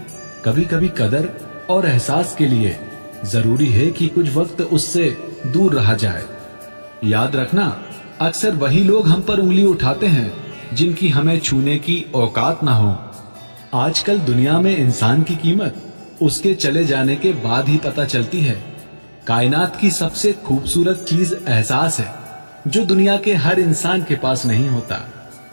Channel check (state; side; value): inverted; both; correlation -1.00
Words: कभी कभी कदर और एहसास के लिए जरूरी है कि कुछ वक्त उससे दूर रहा जाए। याद रखना, अक्सर वही लोग हम पर उंगली उठाते हैं जिनकी हमें छूने की औकात ना हो। आजकल दुनिया में इंसान की कीमत उसके चले जाने के बाद ही पता चलती है। कायनात की सबसे खूबसूरत चीज एहसास है, जो दुनिया के हर इंसान के पास नहीं होता।